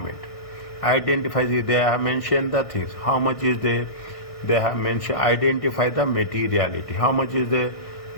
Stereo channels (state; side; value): late; right; 1.6 ms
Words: Identify, they have mentioned the things. How much is there? They have mentioned, identify the materiality. How much is there?